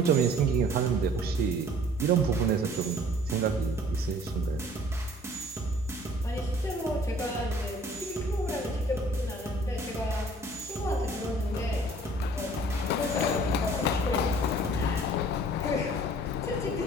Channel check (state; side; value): normal; both; correlation 0.53